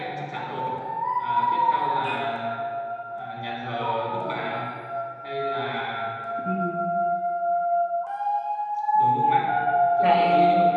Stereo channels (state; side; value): identical; both; correlation 1.00